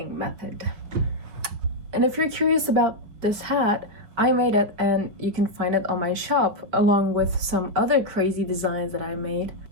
method. And if you're curious about this hat, I made it and you can find it on my shop, along with some other crazy designs that I made.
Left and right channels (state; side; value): late; left; 5.4 ms